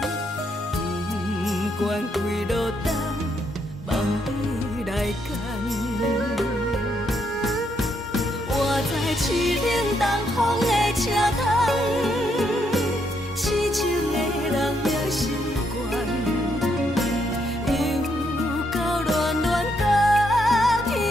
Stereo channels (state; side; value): normal; both; correlation 0.76